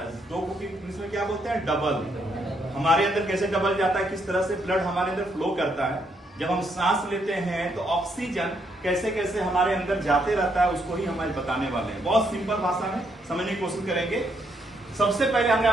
दो को इंग्लिश में क्या बोलते हैं? डबल। हमारे अंदर कैसे डबल जाता है, किस तरह से ब्लड हमारे अंदर फ्लो करता है? जब हम सांस लेते हैं तो ऑक्सीजन कैसे कैसे हमारे अंदर जाते रहता है, उसको ही हम आज बताने वाले हैं। बहुत सिंपल भाषा में समझने की कोशिश करेंगे। सबसे पहले हमने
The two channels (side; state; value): both; normal; correlation 0.75